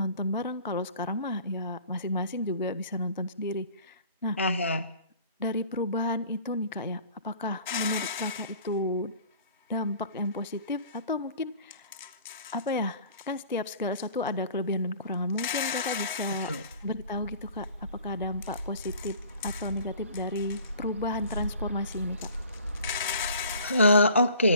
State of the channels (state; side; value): inverted; both; correlation -0.49